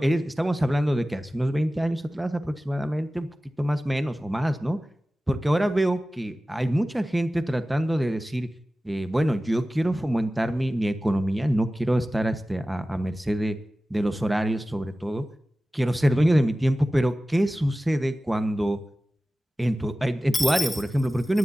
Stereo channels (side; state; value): both; normal; correlation 0.96